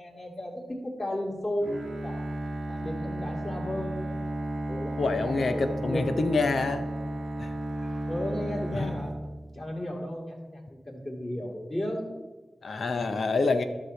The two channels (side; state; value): both; normal; correlation 0.92